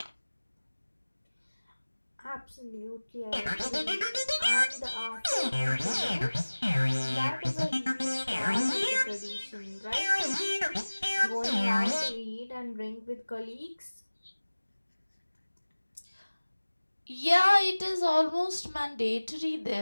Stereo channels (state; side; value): inverted; both; correlation -1.00